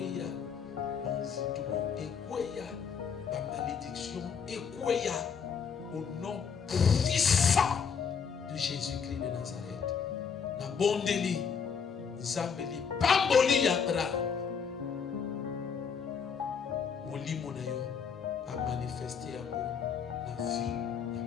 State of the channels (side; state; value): right; quieter; 6.5 dB